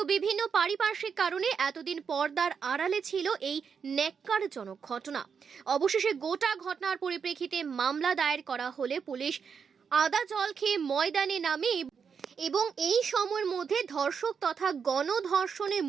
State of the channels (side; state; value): left; quieter; 6.4 dB